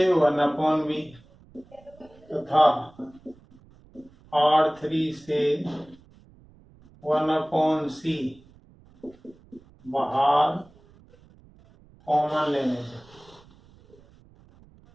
1/b तथा R3 से 1/c बाहर कॉमन लेने से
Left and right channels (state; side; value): noise; right; rumble, 27 dB below the sound